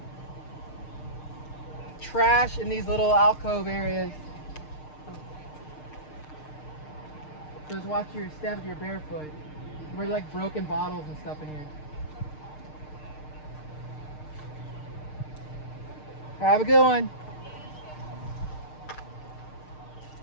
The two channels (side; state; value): right; late; 6.6 ms